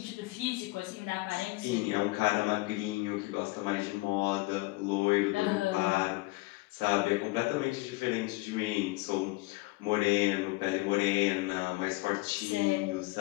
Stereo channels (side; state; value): right; quieter; 22.5 dB